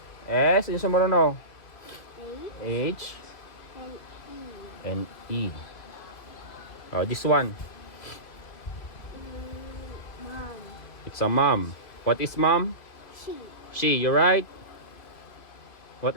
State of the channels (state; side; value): late; right; 2.7 ms